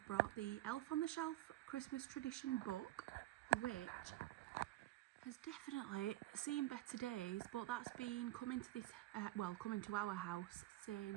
brought the Elf on the Shelf Christmas Tradition book, which has definitely seen better days, but that's been coming to this coming to our house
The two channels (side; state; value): left; quieter; 16.4 dB